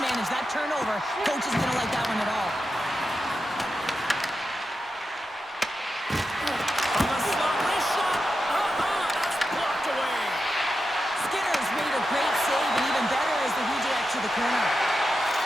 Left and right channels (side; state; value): both; normal; correlation 0.89